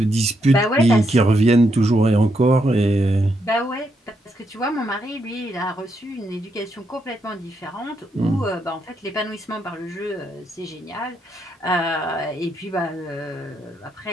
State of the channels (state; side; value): normal; both; correlation 0.79